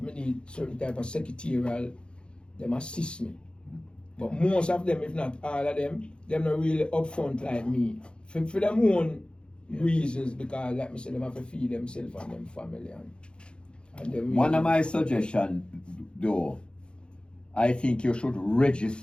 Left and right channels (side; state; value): right; late; 0.054 ms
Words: I need certain type of secretarial, them assist me. But most of them, if not all of them not really upfront like me. For them own reasons because like me say them have to feed themselves and them family and them One of my suggestions though, I think you should